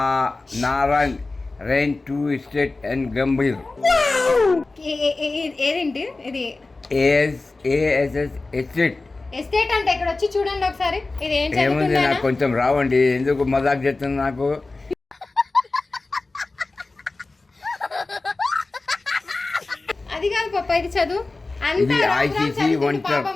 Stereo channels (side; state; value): right; quieter; 3.4 dB